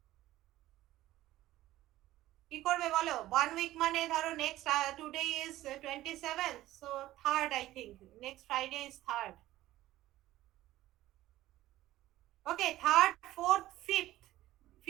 কি করবে বলো? 1 week মানে ধরো next today is 27, so 3rd, I think next Friday is 3rd. Okay, 3rd, 4th,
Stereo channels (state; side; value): quieter; left; 15.4 dB